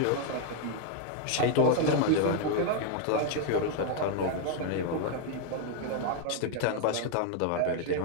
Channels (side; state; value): both; different; correlation 0.00